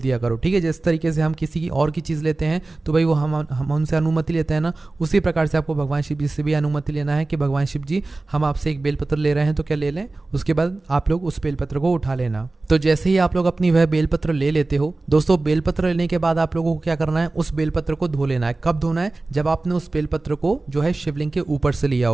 करो, ठीक है। जिस तरीके से हम किसी की और की चीज़ लेते हैं तो भाई वो हम उनसे अनुमति लेते हैं ना, उसी प्रकार से आपको भगवान शिव जी से भी अनुमति लेना है कि भगवान शिव जी, हम आपसे एक बेलपत्र ले रहे हैं तो क्या ले लें। उसके बाद आप लोग उस बेलपत्र को उठा लेना। तो जैसे ही आप लोग अपनी वह बेलपत्र ले लेते हो दोस्तों, बेलपत्र लेने के बाद आप लोगों को क्या करना है, उस बेलपत्र को धो लेना है। कब धोना है, जब आपने उस बेलपत्र को जो है शिवलिंग के ऊपर से लिया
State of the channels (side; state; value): left; quieter; 3.3 dB